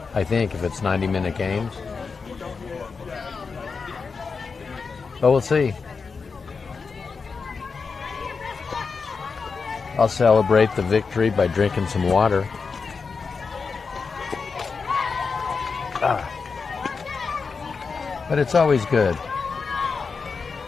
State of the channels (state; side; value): quieter; right; 5.0 dB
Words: I think, if it's 90-minute games. But we'll see. I'll celebrate the victory by drinking some water. But it's always good.